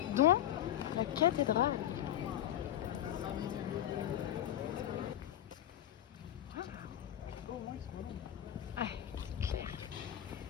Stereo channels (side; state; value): right; quieter; 12.0 dB